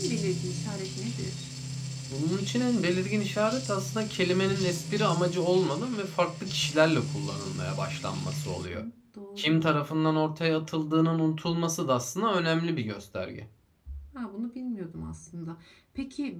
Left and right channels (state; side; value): identical; both; correlation 1.00